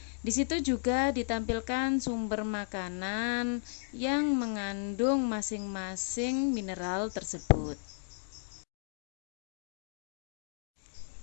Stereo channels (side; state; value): right; silent; digital silence